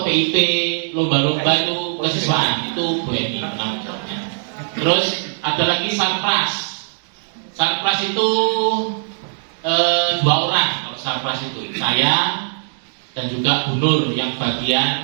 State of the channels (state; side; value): silent; left; digital silence